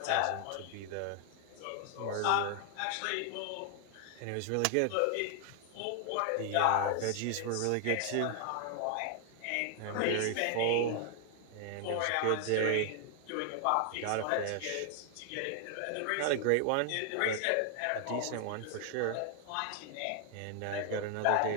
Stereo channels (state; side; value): different; both; correlation 0.00